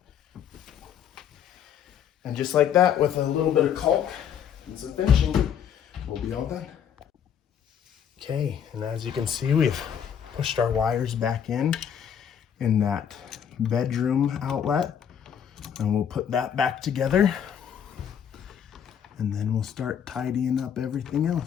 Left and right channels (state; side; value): quieter; right; 8.5 dB